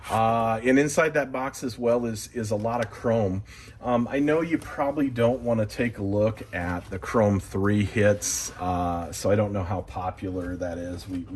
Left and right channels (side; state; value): both; identical; correlation 1.00